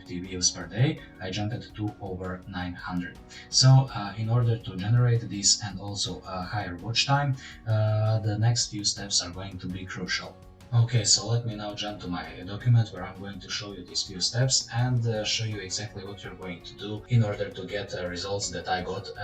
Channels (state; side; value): identical; both; correlation 1.00